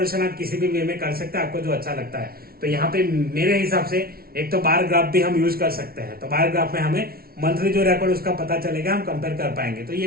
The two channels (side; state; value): left; late; 0.44 ms